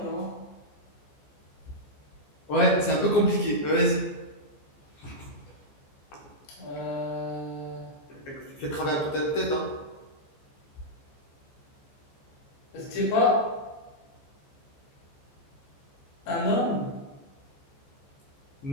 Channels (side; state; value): right; late; 14 ms